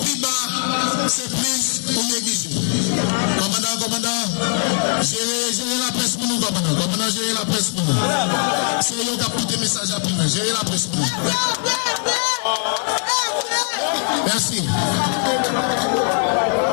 bas, c'est plus ou négligé. Commandant, gérer la presse pour nous, commandant, gérer la presse pour nous. C'est eux qui ont tout les messages à prendre, gérer la presse pour nous. Merci.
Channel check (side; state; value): right; quieter; 39.9 dB